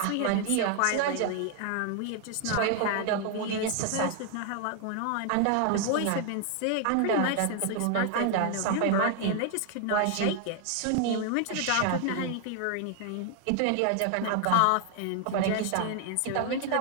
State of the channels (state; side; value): different; both; correlation 0.00